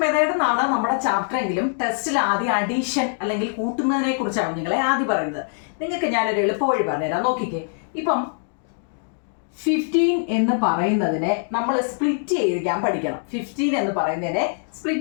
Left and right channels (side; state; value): right; silent; 63 dB below the other